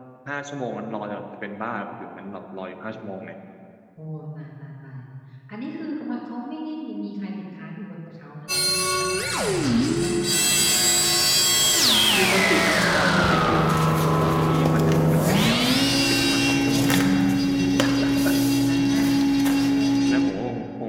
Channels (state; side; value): identical; both; correlation 1.00